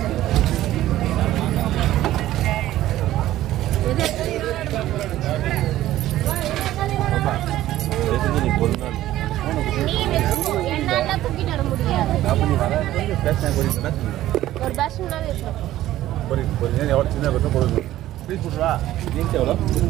நீ ஒரு நாள் நீ வச்சுக்கோ, என்னால தூக்கிட்டு வர முடியாது. அப்போ நீ வர பேசினா போறீங்கன்னா ஒரு பேஷன்னாவே இருக்கும். போறீங்க எவ்வளோ சின்ன பக்கம் போடுங்க ப்ளீஸ் போட்டுருவா. ஜீன்ஸ் எவ்வளோ?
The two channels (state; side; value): quieter; left; 14.3 dB